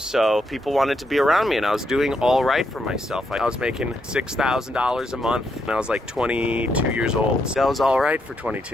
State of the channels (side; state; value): both; normal; correlation 0.79